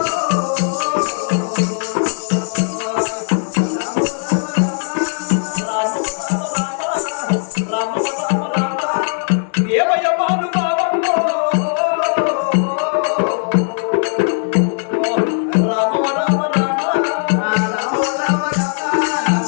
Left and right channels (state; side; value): silent; right; digital silence